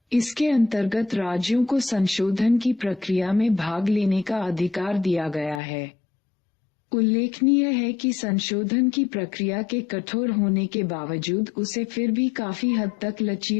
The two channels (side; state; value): right; drops out; at 5.6 s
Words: इसके अंतर्गत राज्यों को संशोधन की प्रक्रिया में भाग लेने का अधिकार दिया गया है। उल्लेखनीय है कि संशोधन की प्रक्रिया के कठोर होने के बावजूद उसे फिर भी काफी हद तक